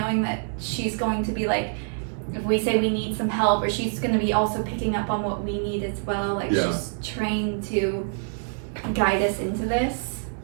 that she's going to be like, if we say we need some help, or she's going to be also picking up on what we need as well. Like she's trained to guide us into this.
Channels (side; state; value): left; silent; digital silence